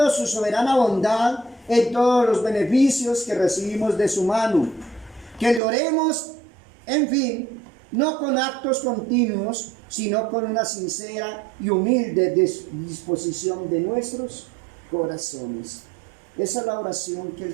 su soberana bondad en todos los beneficios que recibimos de su mano. Que le oremos, en fin, no con actos continuos, sino con una sincera y humilde disposición de nuestros corazones. Esa es la oración que Él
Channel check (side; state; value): left; drops out; at 5.6 s